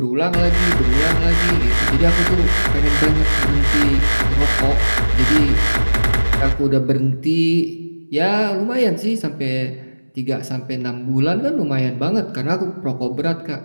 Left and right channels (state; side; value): inverted; both; correlation -1.00